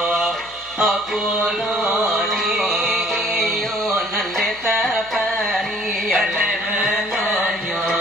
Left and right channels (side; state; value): left; noise; hum, 26 dB below the sound